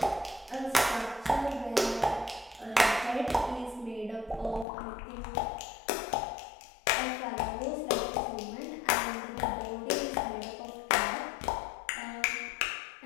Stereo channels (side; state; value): right; drops out; at 4.7 s